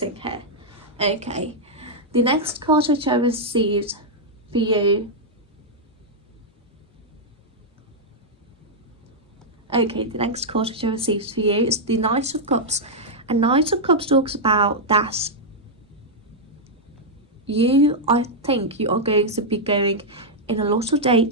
here. Okay, the next card which I received for you. Okay, the next card which I received for you is the Knight of Cups, and Knight of Cups talks about that I think you are going to be going in a lot of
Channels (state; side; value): normal; both; correlation -0.05